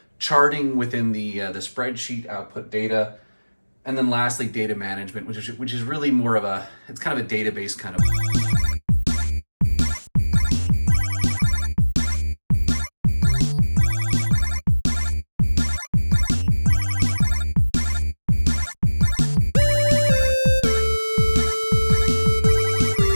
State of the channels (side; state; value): both; inverted; correlation -1.00